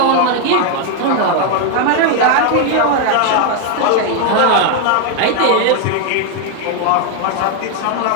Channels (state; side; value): different; both; correlation 0.00